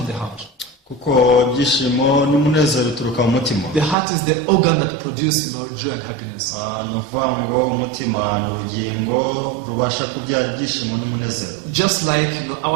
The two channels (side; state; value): left; drops out; at 4.0 s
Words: the heart. Kuko ibyishimo n'umunezero bituruka mu mutima. The heart is the organ that produces joy and happiness. Ni ukuvuga ngo umutima ni urugingo rubasha kubyara ibyishimo n'umunezero. Just like